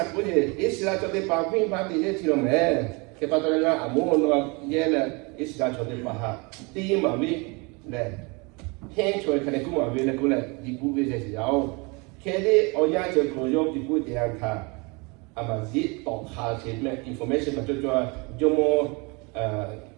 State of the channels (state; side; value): quieter; left; 29.3 dB